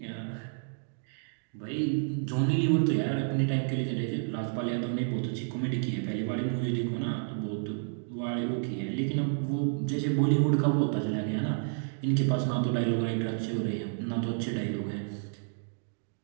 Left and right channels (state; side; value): silent; left; digital silence